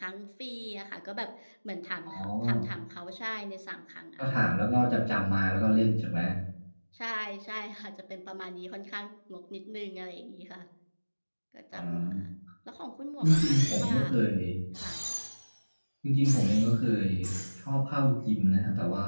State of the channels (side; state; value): both; inverted; correlation -1.00